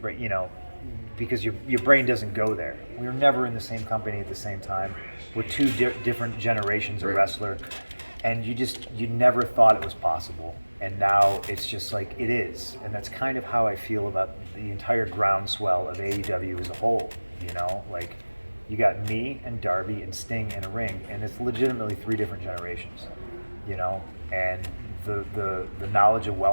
because your brain doesn't go there. We were never in the same company at the same time. We're two different generations of wrestler, and you never thought it was possible. And now it's just like it is. And that's kind of how I feel about the entire groundswell of AEW as a whole. You got me and Darby and Sting in a ring, and it's legitimately 3 different generations, and the knowledge of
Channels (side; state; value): both; inverted; correlation -1.00